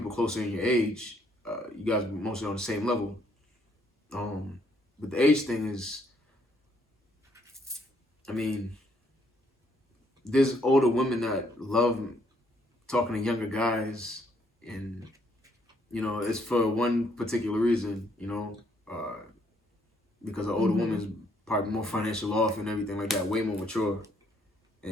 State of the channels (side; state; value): both; normal; correlation 0.69